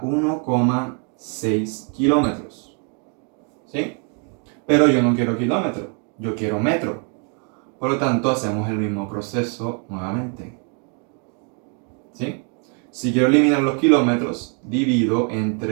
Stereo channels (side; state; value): left; quieter; 39.1 dB